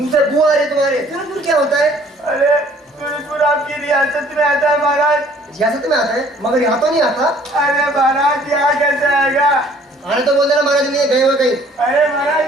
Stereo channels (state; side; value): normal; both; correlation 0.57